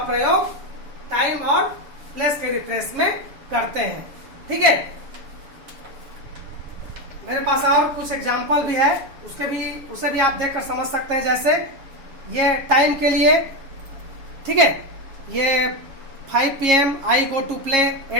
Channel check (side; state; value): left; late; 7.3 ms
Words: प्रयोग टाइम और प्लेस के रेफरेंस में करते हैं, ठीक है। मेरे पास और कुछ एग्जाम्पल भी है, उसे भी आप देखकर समझ सकते हैं। जैसे ये टाइम के लिए, ठीक है, ये 5 PM I go to play,